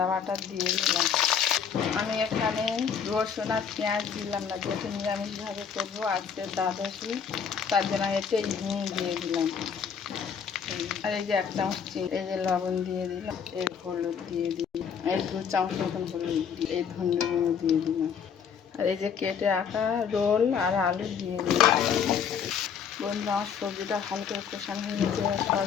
বাটা দিয়ে দিলাম। আমি এখানে রসুন আর পেঁয়াজ দিলাম না, যেহেতু নিরামিষভাবে করবো আজকে দ্বাদশী, তার জন্য আমি একটু হিং দিয়ে দিলাম। আর এই যে 1 চামচ চিনি, এই যে লবণ দিয়ে দিলাম, এই হলুদ দিয়ে দিলাম, এই 2 চামচ মতন হলুদ দিয়ে, এই ধনে গুঁড়ো দিয়ে দিলাম। আর এই যে কেটে রাখা রোল আর আলু দিয়ে দিলাম। বন্ধুরা, আমার সবজিটা ভালো করে কষানো হয়ে গেছে।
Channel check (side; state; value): right; quieter; 7.2 dB